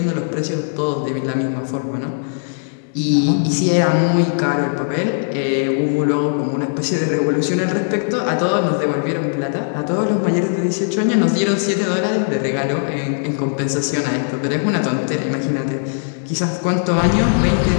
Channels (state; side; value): silent; right; digital silence